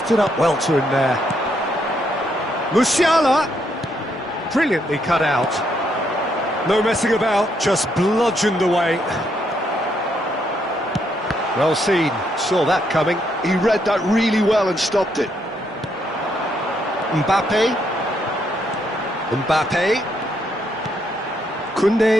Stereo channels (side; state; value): both; normal; correlation 0.75